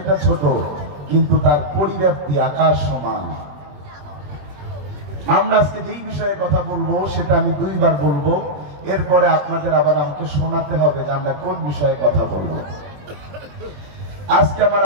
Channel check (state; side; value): late; left; 21 ms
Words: ছোট, কিন্তু তার পরিব্যাপ্তি আকাশ সমান। আমরা আজকে যেই বিষয়ে কথা বলবো সেটা আমি দুইবার বলবো, এরপরে আপনাদের আবার আমাকে শোনাতে হবে যে আমরা কোন বিষয়ে কথা বলবো। আজকে আমার